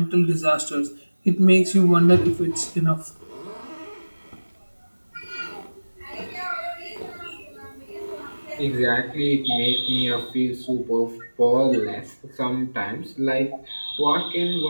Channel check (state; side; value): inverted; both; correlation -1.00